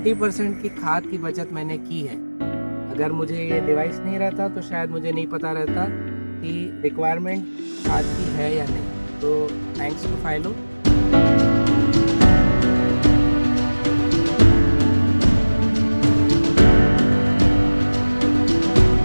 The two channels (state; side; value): inverted; both; correlation -1.00